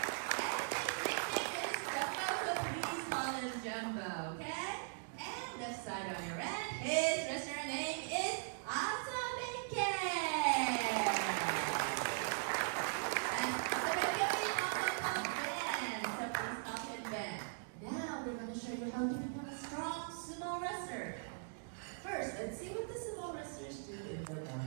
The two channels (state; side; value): silent; left; digital silence